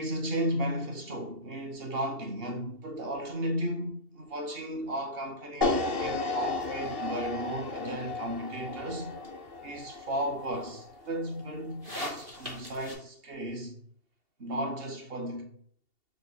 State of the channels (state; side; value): late; left; 2.7 ms